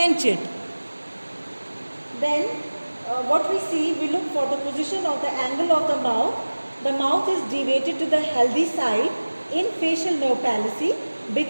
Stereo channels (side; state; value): both; inverted; correlation -1.00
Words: it. Then what we see, we look for the position of the angle of the mouth. The mouth is deviated to the healthy side in facial nerve palsy